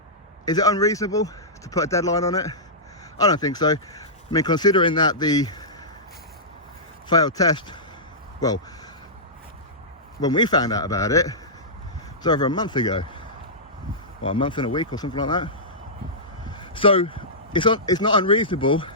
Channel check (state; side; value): normal; both; correlation -0.15